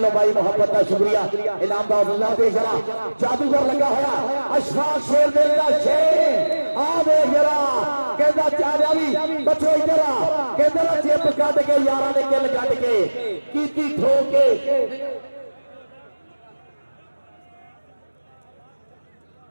भाई मोहब्बत का शुक्रिया इनाम का हौसला दे जरा जादूगर लगा होया अशफाक शेर दिल का शेर आ देख जरा कहता चारिया भी बचो इधर कहता चिप कट के यारा ने किल कट के कीती ठोक के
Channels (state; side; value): inverted; both; correlation -1.00